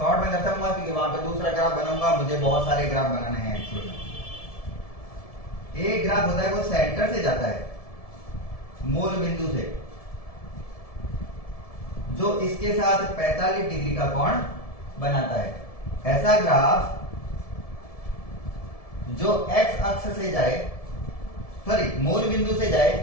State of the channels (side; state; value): right; late; 1.7 ms